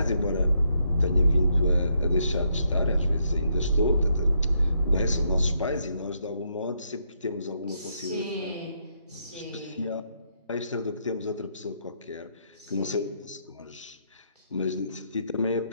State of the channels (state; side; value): inverted; both; correlation -0.76